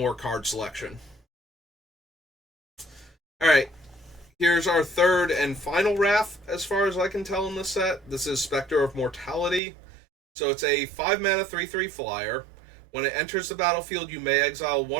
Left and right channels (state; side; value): drops out; left; at 9.6 s